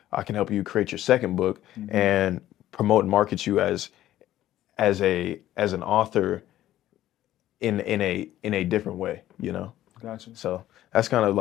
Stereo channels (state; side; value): quieter; right; 13.5 dB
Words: I can help you create your second book and promote and market you as an author in a different way, Gotcha. So that's kind of